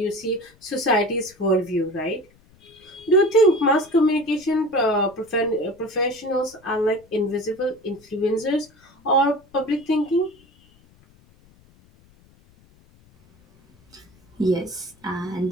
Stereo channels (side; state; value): left; noise; rumble, 30 dB below the sound